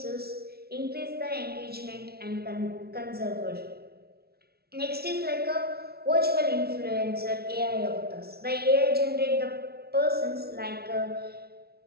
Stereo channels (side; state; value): left; late; 0.45 ms